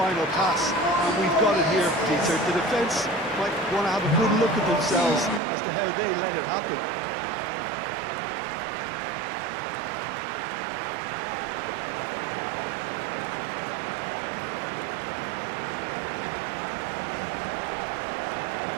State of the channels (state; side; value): drops out; left; at 5.4 s